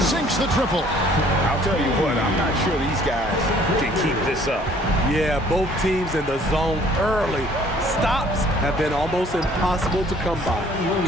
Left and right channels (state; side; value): normal; both; correlation 0.57